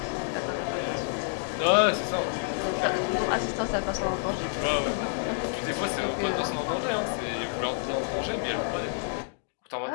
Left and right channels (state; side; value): silent; right; digital silence